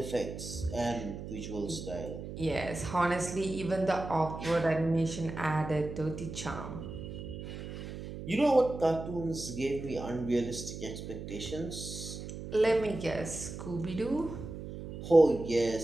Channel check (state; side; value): noise; right; hum, 9 dB below the sound